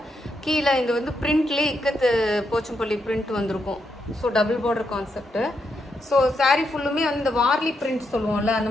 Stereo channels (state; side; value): normal; both; correlation 0.81